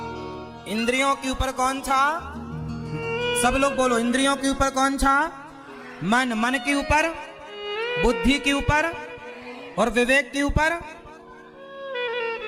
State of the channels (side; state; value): both; identical; correlation 1.00